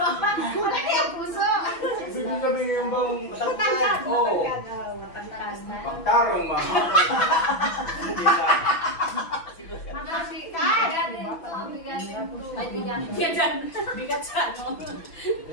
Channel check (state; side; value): late; right; 6.0 ms